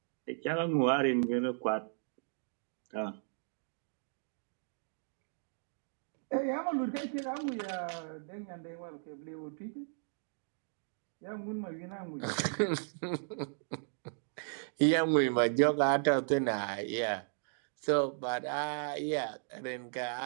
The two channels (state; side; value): silent; left; digital silence